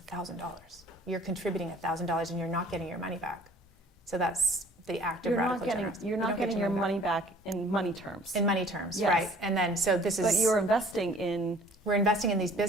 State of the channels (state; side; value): normal; both; correlation 0.52